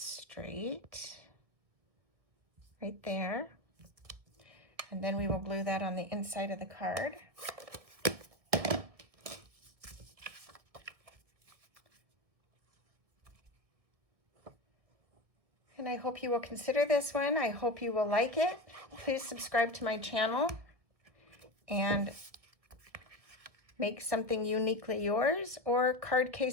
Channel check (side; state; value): left; late; 1.5 ms